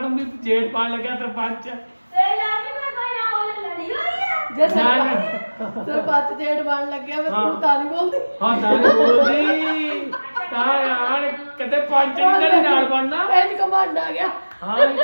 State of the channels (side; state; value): both; inverted; correlation -1.00